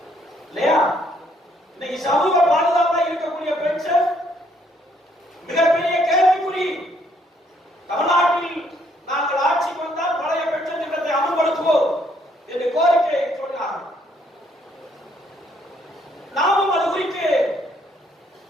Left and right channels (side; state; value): both; normal; correlation 0.68